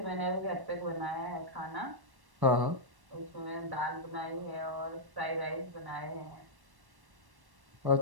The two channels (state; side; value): late; left; 1.1 ms